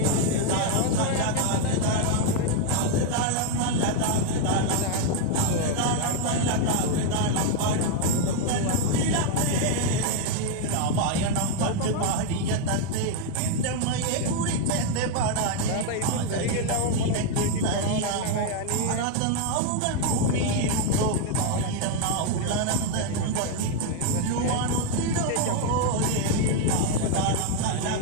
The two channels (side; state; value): both; different; correlation 0.01